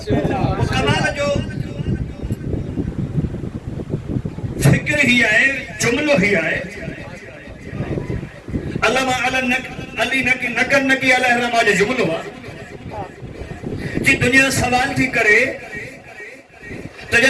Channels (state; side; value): identical; both; correlation 1.00